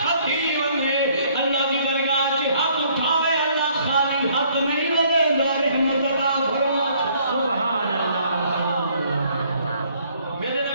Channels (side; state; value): both; inverted; correlation -0.63